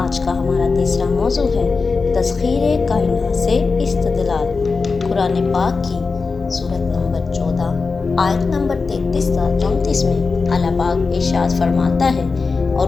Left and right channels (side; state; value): right; quieter; 4.4 dB